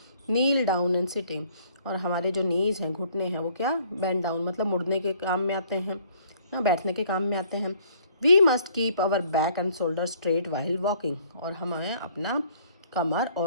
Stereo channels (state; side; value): inverted; both; correlation -0.60